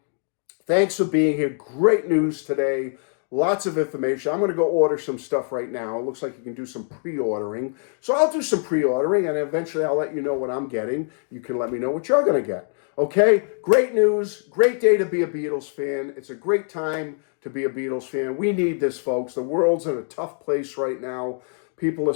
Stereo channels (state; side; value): silent; right; 56 dB below the other